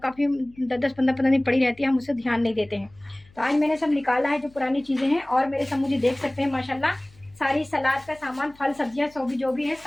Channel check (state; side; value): noise; left; hum, 27 dB below the sound